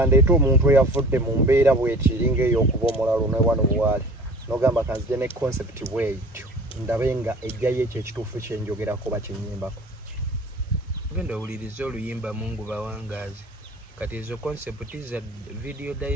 omuntu eyavudde mu mbeera bwetiringa ey'okuba omulalu ne wano bwali n'ogamba kanzije ne concept bwetyo ndabe nga ejjayo ekyo ekituufu kyenjogerako bakinyimbako genda owuliriza oluyimba mungu bawangaazi kati ezo concept za video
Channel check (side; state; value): both; normal; correlation 0.44